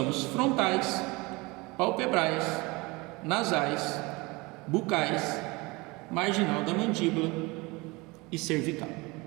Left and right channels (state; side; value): quieter; left; 24.6 dB